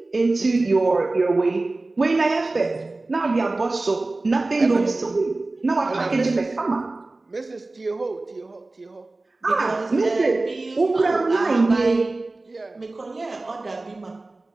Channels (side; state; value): left; quieter; 3.1 dB